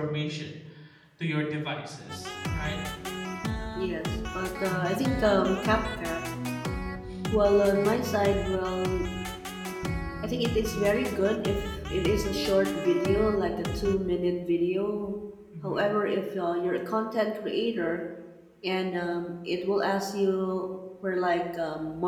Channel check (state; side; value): identical; both; correlation 1.00